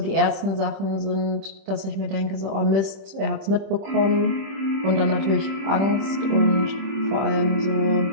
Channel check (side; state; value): left; late; 26 ms